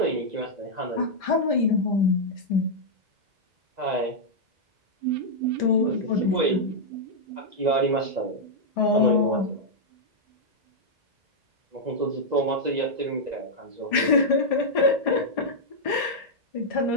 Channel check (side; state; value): left; late; 1.7 ms